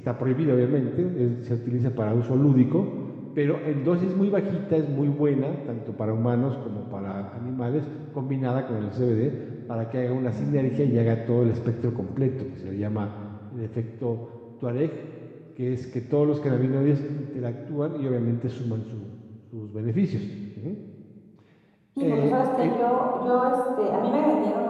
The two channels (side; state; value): both; identical; correlation 1.00